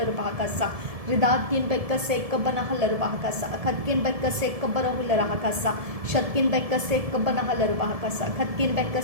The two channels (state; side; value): late; left; 1.7 ms